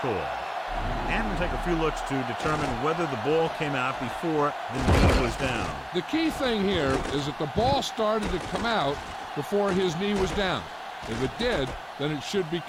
And we'll take a few looks to determine whether the ball came out before the knee was down. The key thing here is that the ball started to come out before his knee was down. If it did, then it should be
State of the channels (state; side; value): identical; both; correlation 1.00